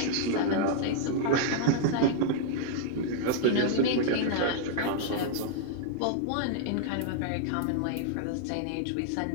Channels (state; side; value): different; both; correlation -0.01